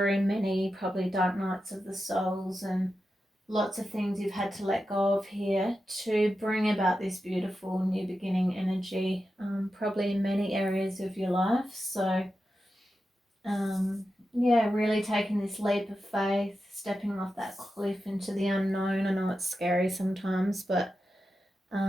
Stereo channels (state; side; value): normal; both; correlation 0.90